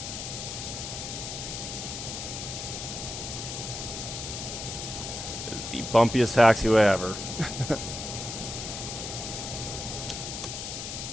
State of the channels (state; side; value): noise; left; hiss, 6 dB below the sound